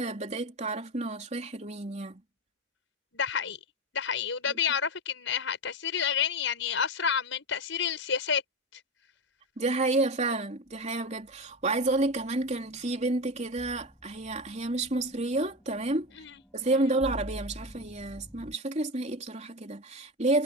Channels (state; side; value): normal; both; correlation 0.18